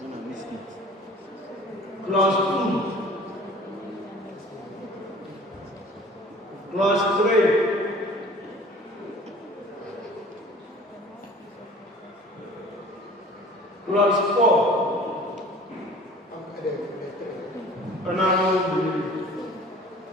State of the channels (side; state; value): both; normal; correlation 0.46